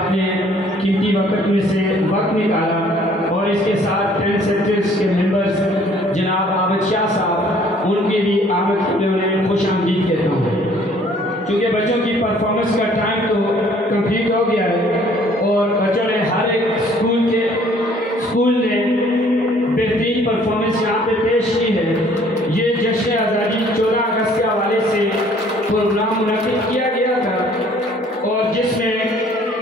قیمتی وقت میں سے وقت نکالا، اور اس کے ساتھ 10 سیکٹرز کے ممبرز جناب عابد شاہ صاحب، ان کے بھی آمد کے لیے انہیں خوش آمدید کہتا ہوں۔ چونکہ بچوں کی پرفارمنس کا ٹائم تو کمپلیٹ ہو گیا ہے، اور بچوں نے ہر ایک اسکول نے بہترین پرفارمنس یہاں پہ پیش کی ہے۔ یہ جشن آزادی 14 اگست کے حوالے سے پروگرام منعقد کیا گیا تھا، اور جس میں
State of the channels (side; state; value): both; normal; correlation 0.58